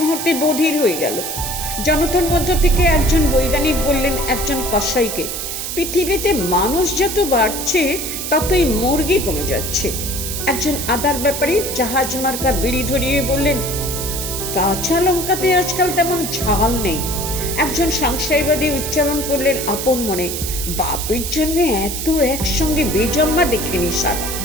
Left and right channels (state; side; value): noise; right; hiss, 5 dB below the sound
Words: বধির হয়ে গেল। জনতার মধ্য থেকে একজন বৈজ্ঞানিক বললেন একজন কসাইকে, পৃথিবীতে মানুষ যত বাড়ছে ততই মুরগি কমে যাচ্ছে। একজন আদার ব্যাপারী জাহাজ মার্কা বিড়ি ধরিয়ে বললেন, কাঁচা লঙ্কাতে আজকাল তেমন ঝাল নেই। একজন সংশয়বাদী উচ্চারণ করলেন আপন মনে, বাপের জন্য এত একসঙ্গে বেজম্মা দেখেনি স্যার।